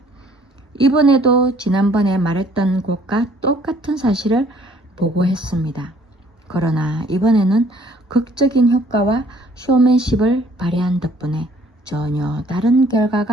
이번에도 지난번에 말했던 것과 똑같은 사실을 보고했습니다. 그러나 이번에는 극적인 효과와 쇼맨십을 발휘한 덕분에 전혀 다른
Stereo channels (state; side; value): normal; both; correlation 0.59